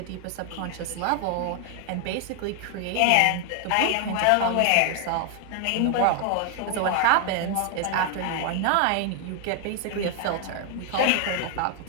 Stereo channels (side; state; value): both; different; correlation 0.00